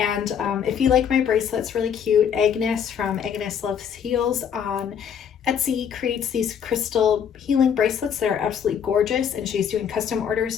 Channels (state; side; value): quieter; right; 8.0 dB